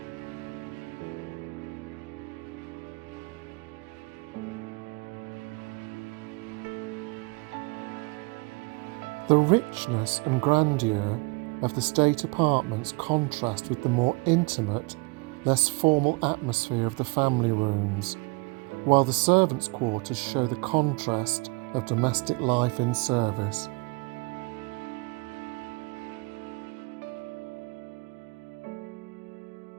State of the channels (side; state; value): left; quieter; 29.1 dB